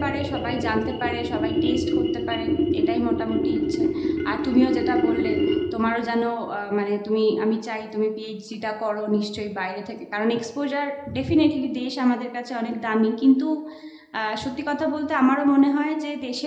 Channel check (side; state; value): both; identical; correlation 1.00